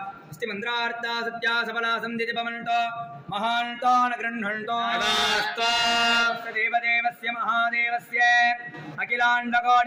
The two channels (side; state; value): both; identical; correlation 1.00